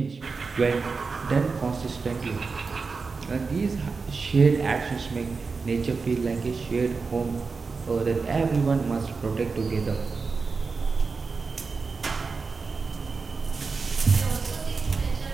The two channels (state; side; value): quieter; left; 4.6 dB